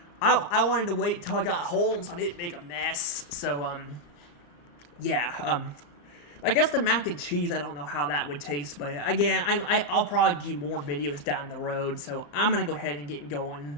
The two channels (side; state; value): right; late; 34 ms